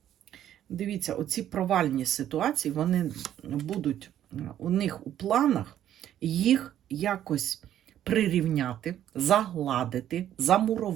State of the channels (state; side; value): quieter; left; 11.3 dB